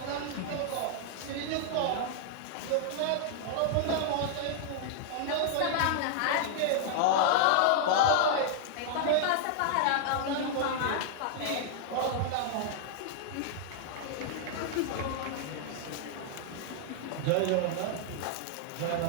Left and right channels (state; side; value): different; both; correlation -0.01